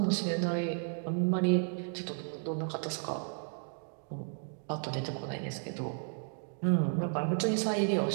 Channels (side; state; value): left; silent; 55 dB below the other